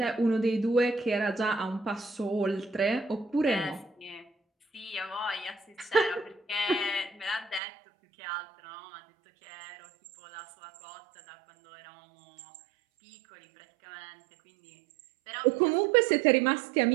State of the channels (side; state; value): left; drops out; at 7.6 s